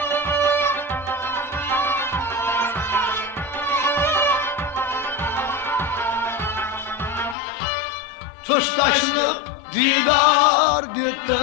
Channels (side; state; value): right; drops out; at 7.4 s